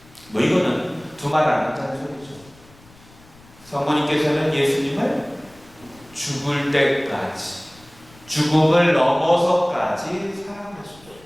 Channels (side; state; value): left; noise; rumble, 26 dB below the sound